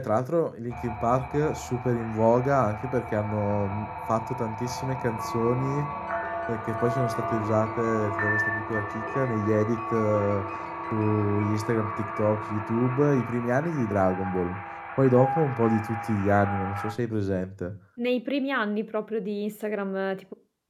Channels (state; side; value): identical; both; correlation 1.00